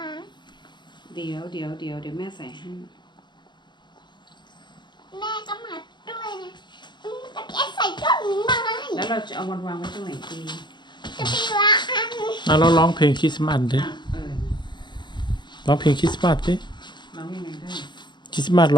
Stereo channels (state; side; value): late; right; 0.22 ms